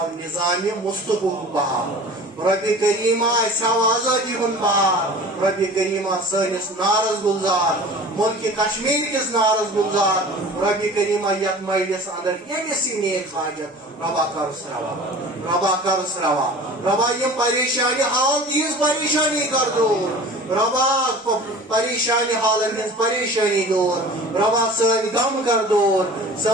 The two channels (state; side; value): normal; both; correlation 0.41